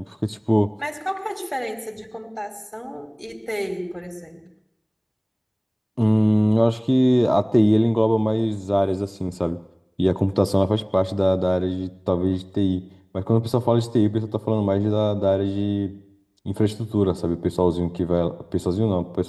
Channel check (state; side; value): identical; both; correlation 1.00